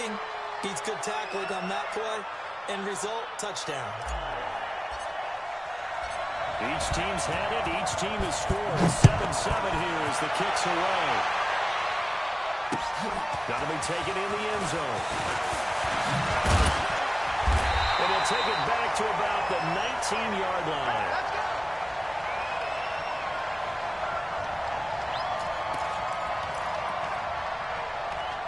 beats good tackling on that play. End result, touchdown. Each team's had it. Each team has scored. 7-7 here as the kick's away. Got to be taken in the end zone. And he'll take it back to about the 19-yard line.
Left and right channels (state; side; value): identical; both; correlation 1.00